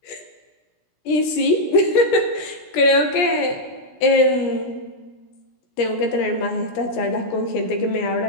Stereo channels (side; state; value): right; late; 17 ms